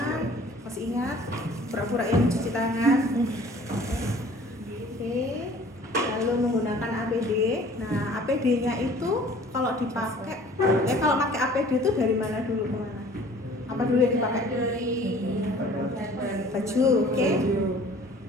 Masih ingat? Pura-pura yang mencuci tangan. Oke. Lalu menggunakan APD. Nah, APD-nya itu kalau dipakai, kalau pakai APD itu dari mana dulu ke mana? Apa dulu yang dipakai? Baju, oke?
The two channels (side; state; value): both; normal; correlation 0.50